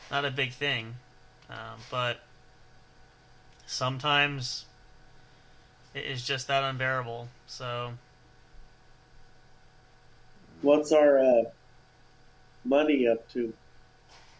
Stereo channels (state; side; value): identical; both; correlation 1.00